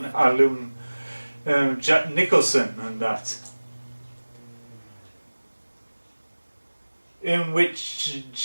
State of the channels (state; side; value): inverted; both; correlation -1.00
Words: alum, Jack Nicholson, and that. In which